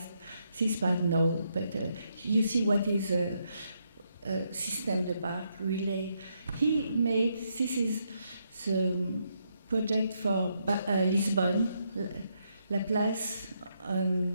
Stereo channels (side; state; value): both; inverted; correlation -0.78